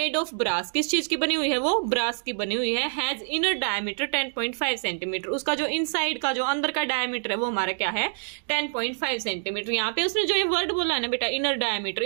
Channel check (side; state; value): left; silent; digital silence